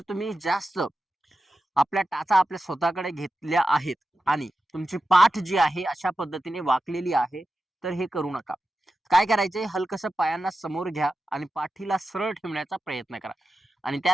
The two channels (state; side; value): normal; both; correlation 0.92